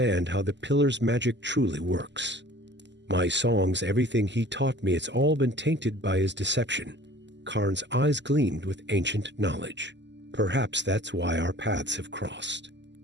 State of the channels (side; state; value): left; late; 0.52 ms